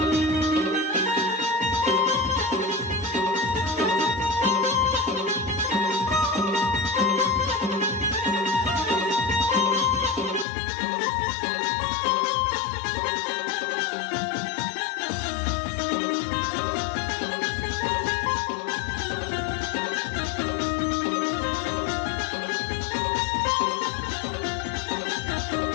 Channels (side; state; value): right; drops out; at 10.5 s